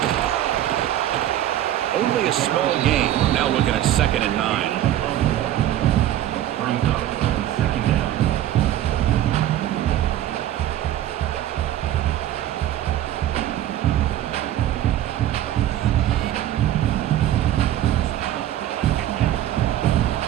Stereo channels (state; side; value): quieter; left; 12.5 dB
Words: Only a small gain. Now looking at second and 9.